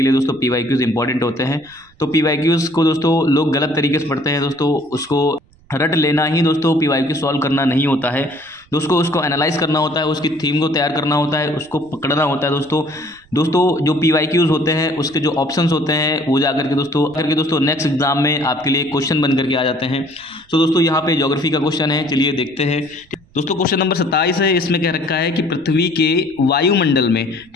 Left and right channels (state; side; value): noise; right; rumble, 30 dB below the sound